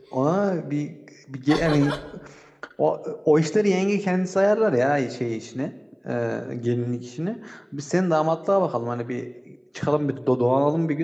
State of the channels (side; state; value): both; identical; correlation 1.00